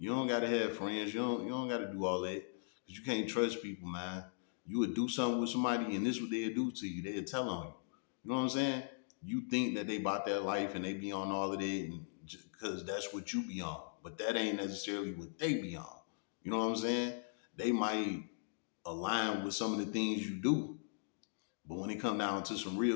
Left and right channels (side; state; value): right; silent; digital silence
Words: don't gotta have friends. You don't gotta do all that. Cause you can't trust people, man. You would do something with somebody and this what they'll do to you. They'll tell on you. You know what I'm saying? You think that they about their life and they be on all of that and cause that's what you be on. But that ain't necessarily what they be on. You know what I'm saying? They might align with some of the things you do. But when it come down to some